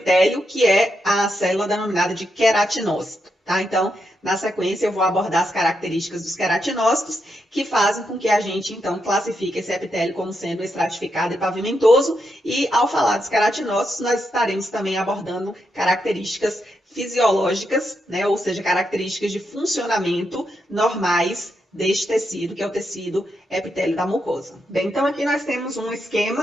que é a célula denominada de queratinócito. Tá? Então, na sequência, eu vou abordar as características dos queratinócitos, que fazem com que a gente, então, classifique esse epitélio como sendo estratificado e pavimentoso. E, ao falar dos queratinócitos, nós estaremos também abordando características fisiológicas, né? Ou seja, características de funcionamento normais deste tecido, que é o tecido epitélio da mucosa. Bem, então aqui nós temos um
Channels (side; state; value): both; normal; correlation 0.83